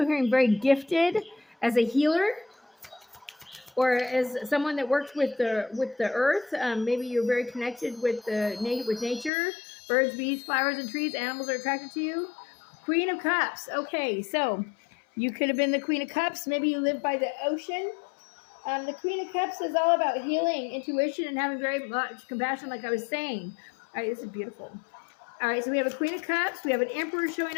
hearing very gifted as a healer, or as someone that worked with the earth. Maybe you're very connected with nature. Birds, bees, flowers, and trees. Animals are attracted to you. Queen of Cups. Okay, so you could have been the Queen of Cups. Maybe you live by the ocean. The Queen of Cups is all about healing, intuition, and having very much compassion, like I was saying. All right, this is beautiful. All right, so we have a Queen of Cups. We have an Emperor showing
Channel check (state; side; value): drops out; right; at 9.3 s